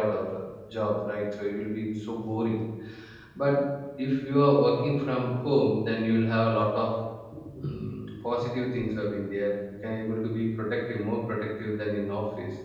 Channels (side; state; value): both; identical; correlation 1.00